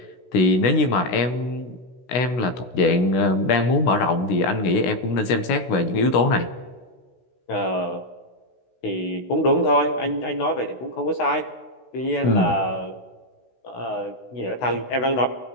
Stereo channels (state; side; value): late; right; 16 ms